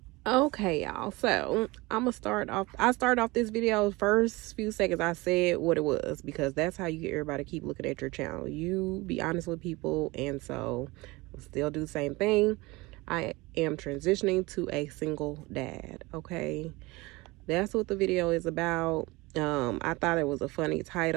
Okay, y'all. So I'm gonna start off. I started off this video first few seconds. I said what it was because that's how you get everybody to keep looking at your channel. You be honest with people, and so I'll still do the same thing. I am transitioning to a single dad. Okay, that's what the video is about. I thought it was a funny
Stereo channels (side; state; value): left; quieter; 22.6 dB